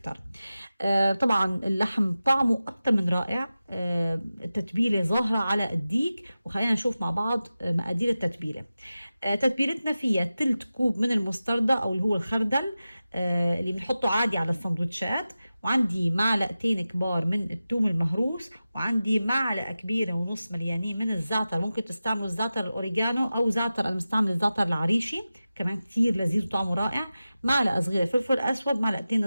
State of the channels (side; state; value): both; inverted; correlation -0.94